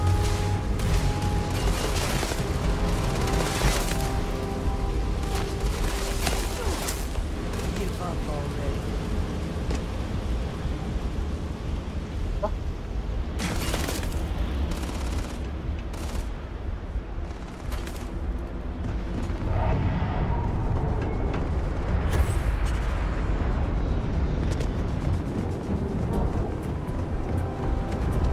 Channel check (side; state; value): both; identical; correlation 1.00